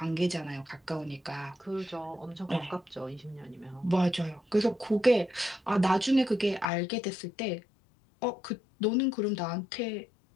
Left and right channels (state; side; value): drops out; right; at 6.7 s